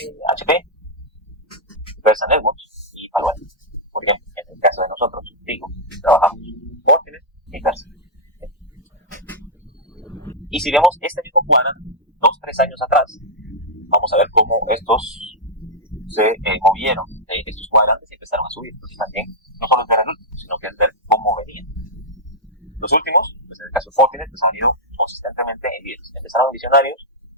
HP, Versa Networks y Palo Alto. Por ejemplo, en el caso de nosotros, digo, trabajamos Fortinet y Versa. Y si vemos este mismo cuadrante 2-3 años atrás, vamos a ver cómo estos se movieron, estos cuadrantes y empezaron a subir. Entonces también no solo es ver el último, sino que es ver cómo venían. Los últimos, pues en el caso de Fortinet, pues han ido consistentemente en líderes. Empezaron en visionarios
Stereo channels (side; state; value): both; normal; correlation -0.07